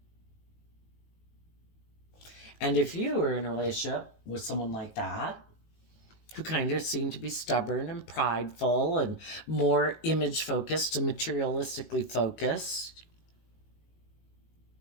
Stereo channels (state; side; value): late; right; 19 ms